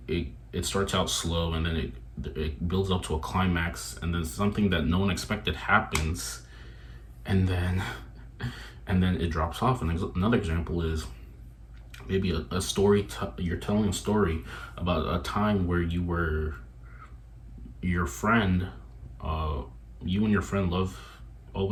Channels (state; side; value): identical; both; correlation 1.00